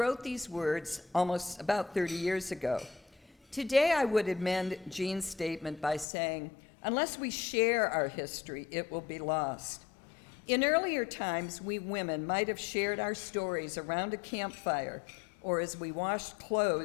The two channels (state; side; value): drops out; right; at 6.1 s